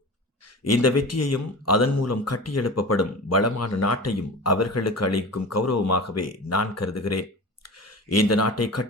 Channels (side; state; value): both; normal; correlation 0.33